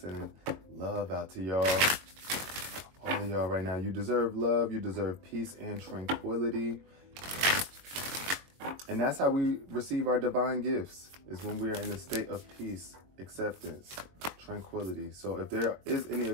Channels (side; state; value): left; late; 22 ms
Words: love out to y'all. All of y'all right now. You deserve love. You deserve peace and tranquility. And that's how we receive our divine gifts, is when we are in a state of peace, acceptance, tranquility. So if there is any